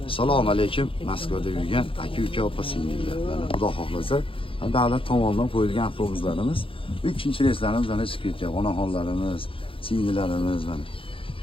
Assalomu alaykum. Moskvada yurgan aka-uka opa-singillar. Mana Xudo xohlasa, davlat tomonidan qo'yilgan avtobuslarimiz 3-reyslarimiz mana chiqib ketgan. Onaxonlarimiz, singillarimiz mana.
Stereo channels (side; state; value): right; late; 0.26 ms